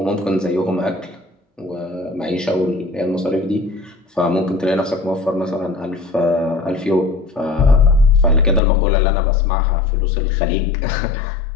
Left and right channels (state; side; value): drops out; right; at 8.6 s